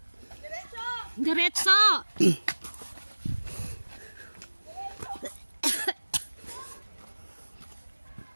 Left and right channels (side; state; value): both; inverted; correlation -1.00